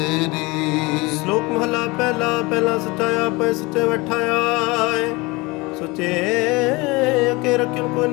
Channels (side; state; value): right; quieter; 24.2 dB